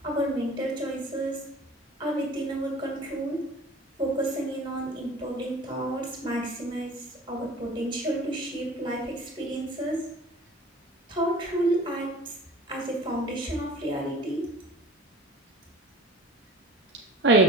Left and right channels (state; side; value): normal; both; correlation 0.43